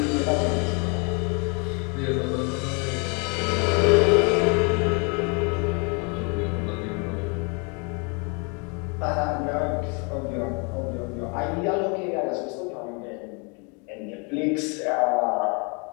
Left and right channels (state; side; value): quieter; right; 34.0 dB